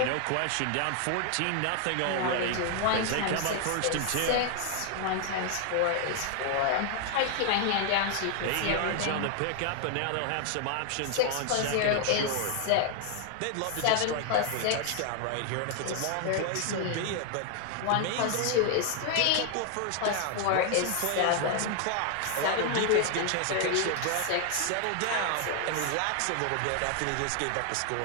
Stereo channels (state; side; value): different; both; correlation 0.00